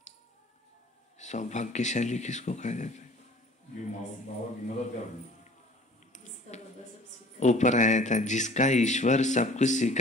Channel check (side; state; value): both; normal; correlation 0.49